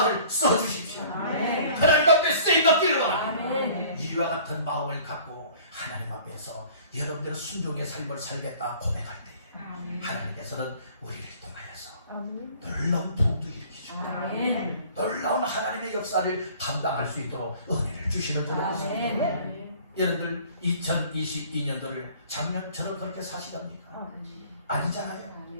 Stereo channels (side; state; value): both; inverted; correlation -0.50